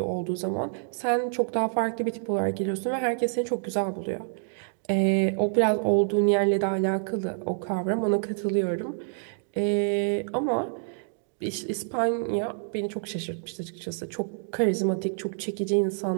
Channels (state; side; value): silent; left; digital silence